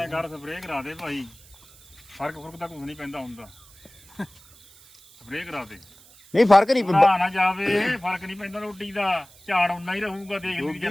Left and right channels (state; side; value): noise; right; hiss, 25 dB below the sound